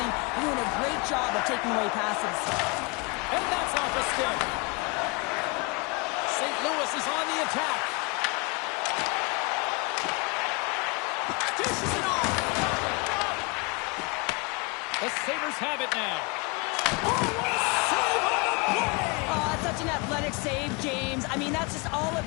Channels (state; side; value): quieter; right; 28.9 dB